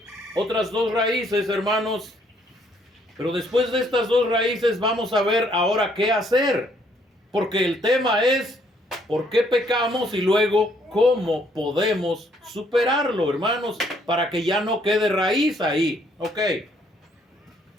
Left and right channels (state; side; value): normal; both; correlation 0.67